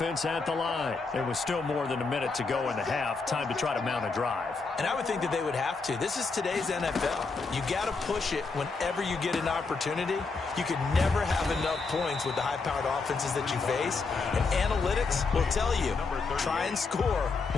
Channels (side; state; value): right; quieter; 4.3 dB